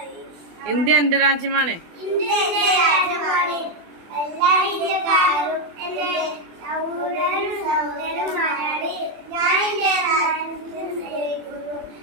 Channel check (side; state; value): left; late; 24 ms